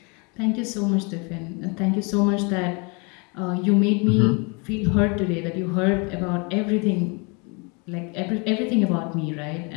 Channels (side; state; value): right; quieter; 31.7 dB